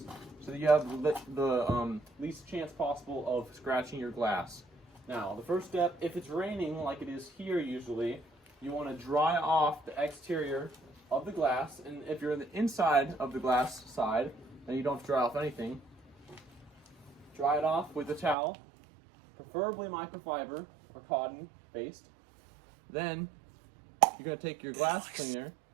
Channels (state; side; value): drops out; left; at 18.4 s